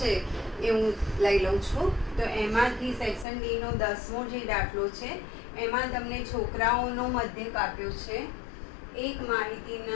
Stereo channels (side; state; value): right; drops out; at 3.2 s